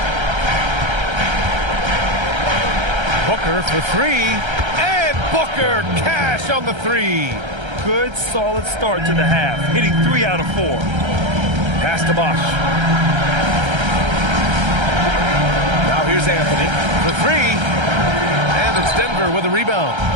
Booker for 3. And Booker cash on the 3. Good, solid start to the half, hitting 3 out of 4. Pass to Bosch. Now here's Anthony for 3. And it's Denver with a rebound.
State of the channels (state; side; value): late; left; 1.3 ms